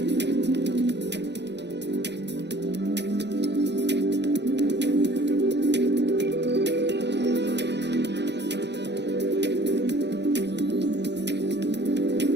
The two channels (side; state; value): left; late; 0.50 ms